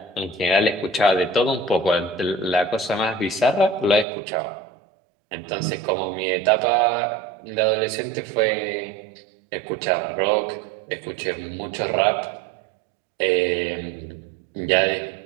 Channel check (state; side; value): drops out; left; at 4.0 s